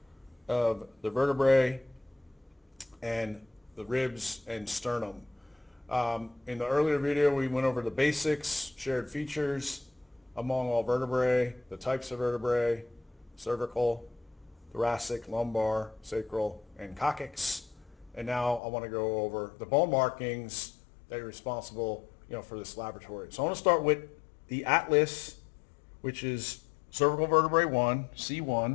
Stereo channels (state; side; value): drops out; right; at 18.6 s